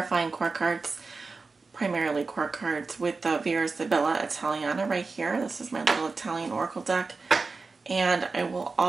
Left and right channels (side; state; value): left; quieter; 4.1 dB